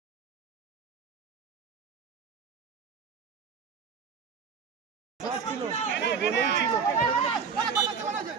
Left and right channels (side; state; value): left; quieter; 6.0 dB